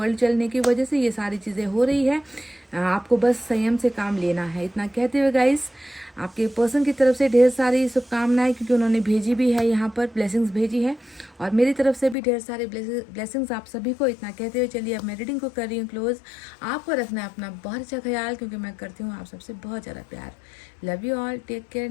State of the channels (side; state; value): right; drops out; at 12.2 s